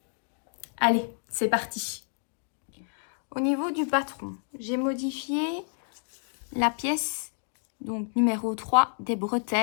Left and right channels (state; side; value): silent; right; 58 dB below the other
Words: Allez, c'est parti. Au niveau du patron, j'ai modifié la pièce donc numéro 3 des